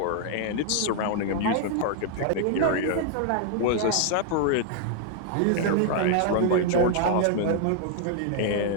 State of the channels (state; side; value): different; both; correlation 0.00